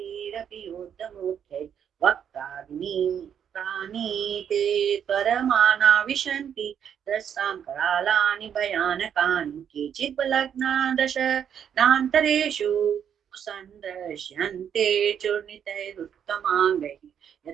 योद्धमुख्यै वक्त्राग्निप्राणि ते त्वरमाना विशन्ति दस्तां करालानि भयानकानि केचित् बलग्ना दशनान्तरेषु सन्दृश्यन्ते चूर्णितैरुत्तमाङ्गैः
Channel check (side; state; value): left; quieter; 8.5 dB